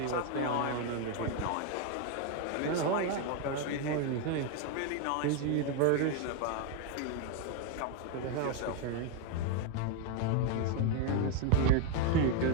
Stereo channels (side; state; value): both; different; correlation 0.01